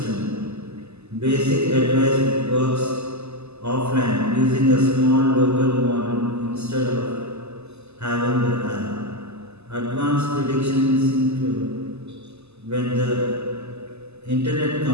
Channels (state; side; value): late; left; 0.80 ms